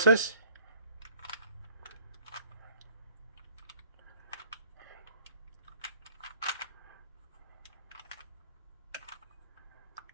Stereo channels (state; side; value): inverted; both; correlation -0.55